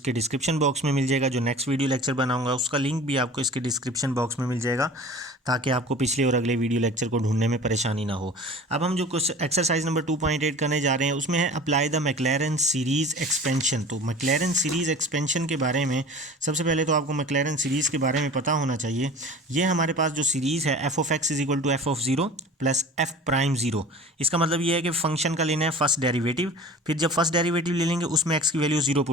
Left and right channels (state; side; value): normal; both; correlation 0.40